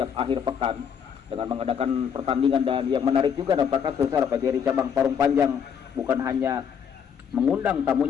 akhir pekan dengan mengadakan pertandingan. Dan yang menarik juga apakah Sursara, PGRI cabang Parung Panjang bukan hanya mengundang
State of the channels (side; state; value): right; quieter; 7.6 dB